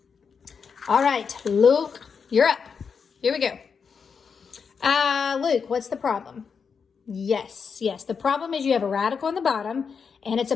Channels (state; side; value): quieter; right; 6.0 dB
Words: All right, Luke, you're up. Here we go. Luke, what's the problem? Yes. The problem is you have a radical on the bottom, and it's a